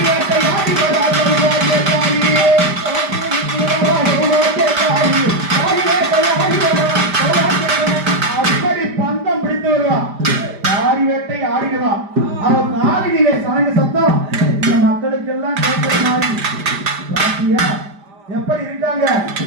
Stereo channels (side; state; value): left; late; 5.0 ms